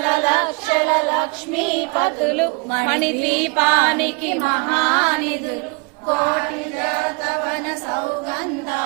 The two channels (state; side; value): quieter; left; 29.8 dB